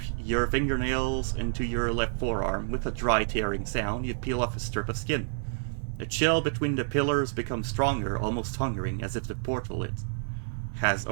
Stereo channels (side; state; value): left; silent; digital silence